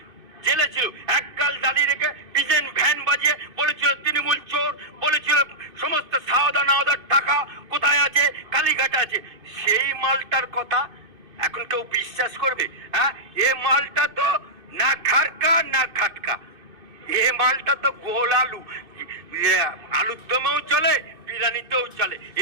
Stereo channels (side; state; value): left; late; 2.5 ms